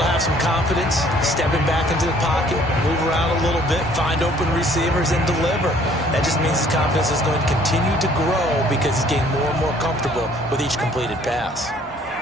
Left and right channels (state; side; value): normal; both; correlation 0.58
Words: have some confidence, stepping back into the pocket, move around a little bit, find open receivers, and deliver. That just means his confidence is going to continue to grow because he's getting more and more comfortable with each completed pass.